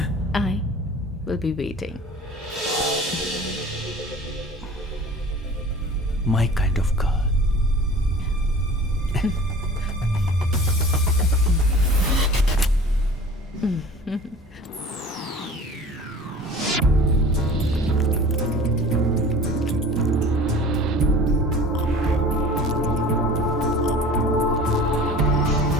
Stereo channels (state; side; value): normal; both; correlation 0.42